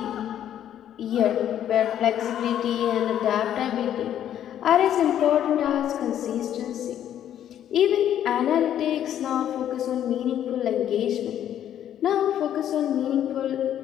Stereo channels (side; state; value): right; quieter; 10.6 dB